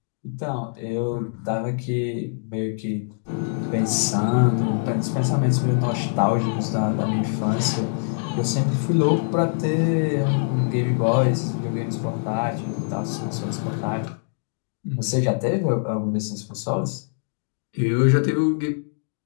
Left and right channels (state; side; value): silent; right; digital silence